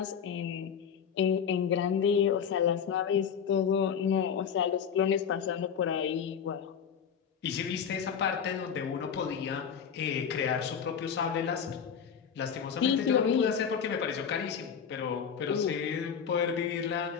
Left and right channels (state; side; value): quieter; right; 7.4 dB